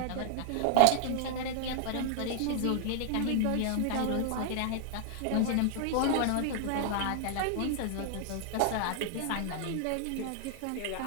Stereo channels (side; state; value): both; different; correlation 0.00